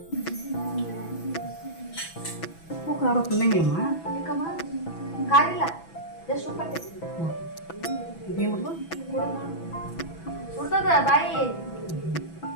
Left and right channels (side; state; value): right; late; 6.0 ms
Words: ಉಪ್ಪು ಖಾರ ತಿನ್ನಂಗಿಲ್ಲಮ್ಮ? ಯಾಕಮ್ಮ ಕಾರಿಲ್ಲ, ಜಸ್ಟ್ ಉಪ್ಪು ಹಾಕ್ತೀನಿ. ಇದೇನು ಸುಡ್ತದ ಬಾಯಿ